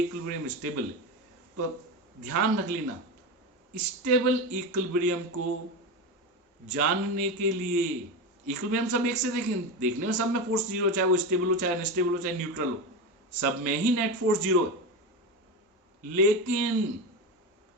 स्टेबल है? तो ध्यान रख लेना, स्टेबल इक्विलिब्रियम को जानने के लिए, इक्विलिब्रियम सब एक से देखें, देखने में सब में फोर्स जीरो, चाहे वो स्टेबल हो, चाहे अनस्टेबल हो, चाहे न्यूट्रल हो, सब में ही नेट फोर्स जीरो है। लेकिन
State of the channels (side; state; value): both; normal; correlation 0.19